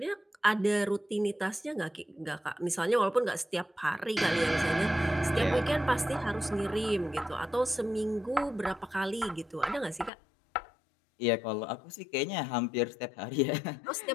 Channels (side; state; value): right; drops out; at 10.1 s